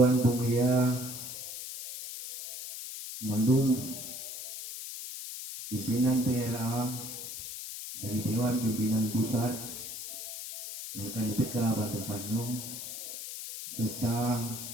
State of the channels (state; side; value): noise; left; hiss, 8 dB below the sound